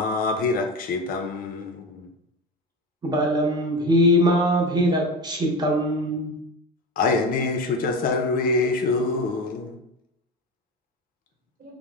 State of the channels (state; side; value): normal; both; correlation 0.24